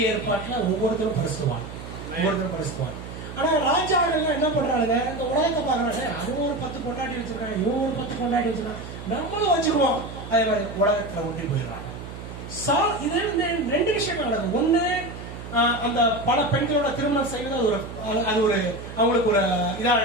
ஏற்பாட்டுல ஒவ்வொருத்தரும் பரிசுவான். ஆனா ராஜாக்கள் என்ன பண்றாங்க, இந்த உலகத்தை பாக்குறாங்க, அது ஒரு 10 கொண்டாட்டி வச்சிருக்காங்க, இவங்க ஒரு 10 கொண்டாட்டி வச்சிருக்காங்க, நம்மளும் வச்சுக்குவோம். அதே மாதிரி உலகத்துல ஒன்றி போயிடுறாங்க. இது 2 விஷயங்கள் நடக்குது. ஒண்ணு, அந்த பல பெண்களோட திருமணம் செய்வது அது ஒரு அவங்களுக்கு ஒரு இதா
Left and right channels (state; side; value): noise; right; hum, 11 dB below the sound